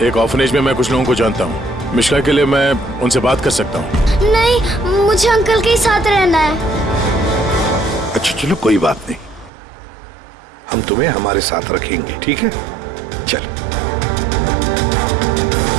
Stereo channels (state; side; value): drops out; left; at 9.5 s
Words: एक ऑर्फनेज में मैं कुछ लोगों को जानता हूँ। मिश्का के लिए मैं उनसे बात कर सकता हूँ। नहीं, मुझे अंकल के साथ रहना है। अच्छा चलो, कोई बात नहीं, हम तुम्हें हमारे साथ रखेंगे, ठीक है? चलो।